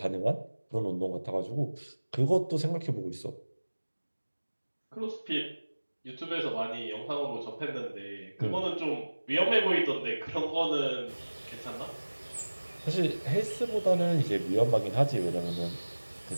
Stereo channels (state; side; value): inverted; both; correlation -1.00